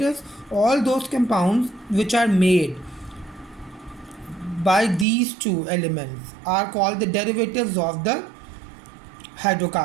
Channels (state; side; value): drops out; left; at 5.1 s